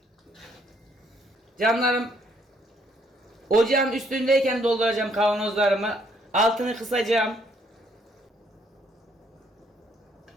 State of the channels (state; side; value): normal; both; correlation 0.68